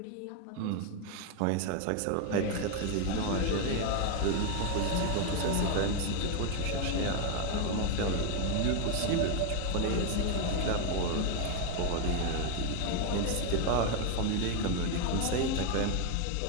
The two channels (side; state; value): both; different; correlation 0.01